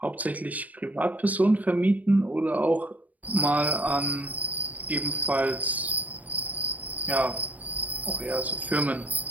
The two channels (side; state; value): left; late; 0.075 ms